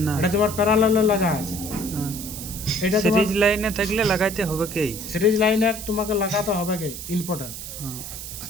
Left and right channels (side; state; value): right; noise; hiss, 9 dB below the sound